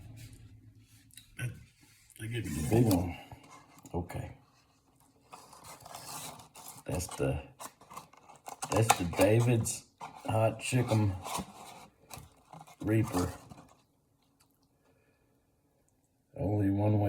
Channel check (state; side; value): identical; both; correlation 1.00